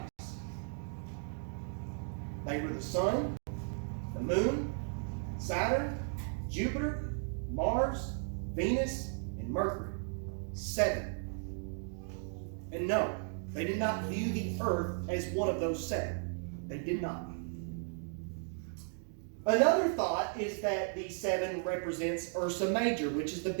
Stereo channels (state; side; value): silent; left; 54 dB below the other